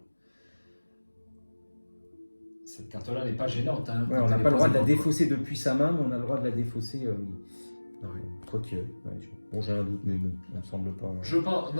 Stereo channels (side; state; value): both; inverted; correlation -1.00